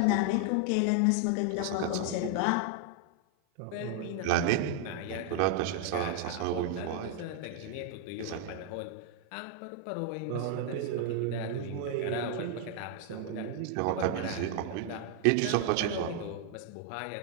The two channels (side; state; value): both; different; correlation 0.00